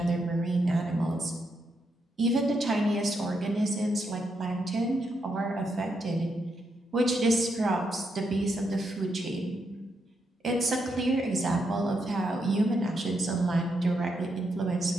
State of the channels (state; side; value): normal; both; correlation 0.81